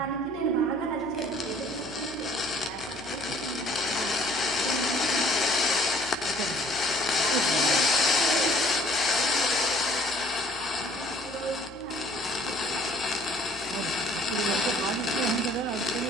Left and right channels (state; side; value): noise; left; hum, 22 dB below the sound